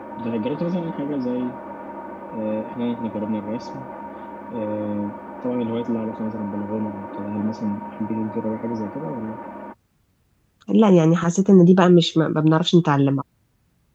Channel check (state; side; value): identical; both; correlation 1.00